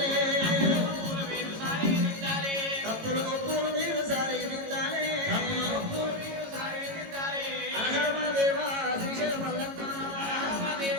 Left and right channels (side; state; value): left; late; 18 ms